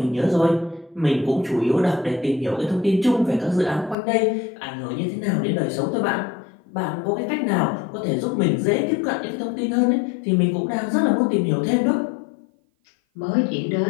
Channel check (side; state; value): right; drops out; at 4.0 s